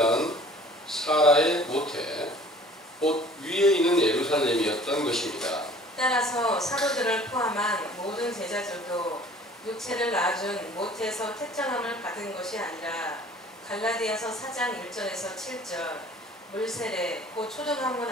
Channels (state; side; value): normal; both; correlation 0.50